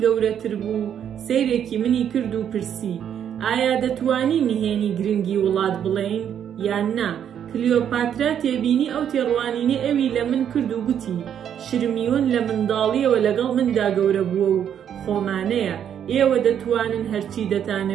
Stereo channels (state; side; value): quieter; left; 9.1 dB